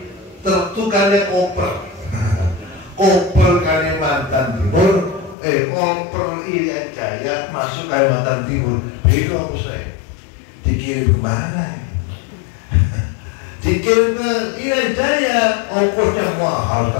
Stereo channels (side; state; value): right; drops out; at 5.4 s